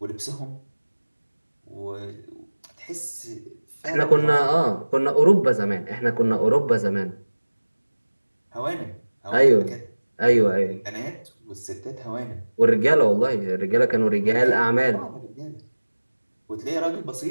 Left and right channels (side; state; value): both; inverted; correlation -1.00